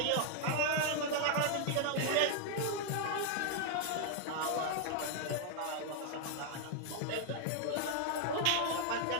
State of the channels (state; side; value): different; both; correlation 0.00